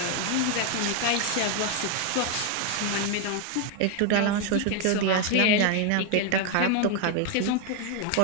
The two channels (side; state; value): both; different; correlation 0.01